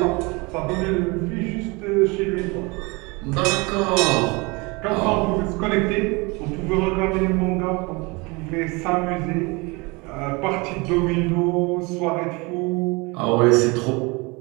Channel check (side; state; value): left; quieter; 26.7 dB